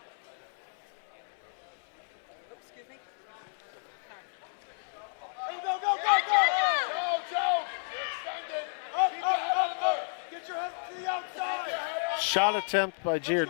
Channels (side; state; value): right; silent; 57 dB below the other